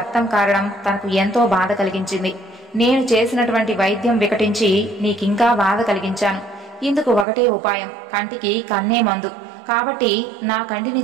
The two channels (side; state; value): left; drops out; at 7.2 s